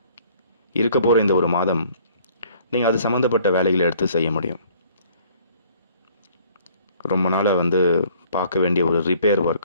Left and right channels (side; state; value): both; inverted; correlation -0.58